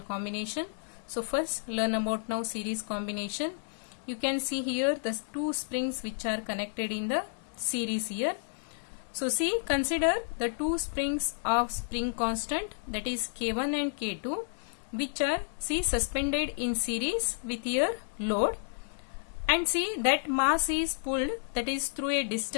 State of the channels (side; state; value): right; silent; digital silence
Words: combination. So first learn about now series combination. You can see here the two springs which are connected in the series here. So see, consider the two springs of spring constant, that is K1 and K2, which are suspended in series with your load, and see that mass is pulled, that is through a